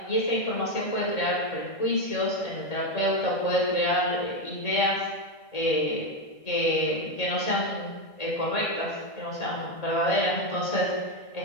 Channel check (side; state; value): right; late; 1.6 ms